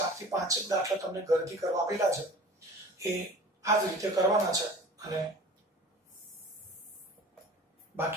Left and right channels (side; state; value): both; normal; correlation 0.41